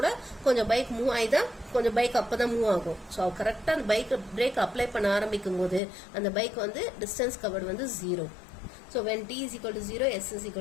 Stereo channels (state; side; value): drops out; right; at 5.8 s